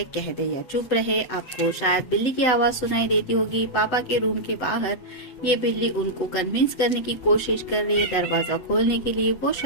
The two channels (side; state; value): right; late; 8.0 ms